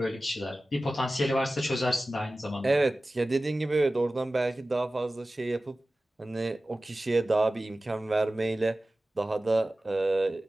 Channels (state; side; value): normal; both; correlation 0.96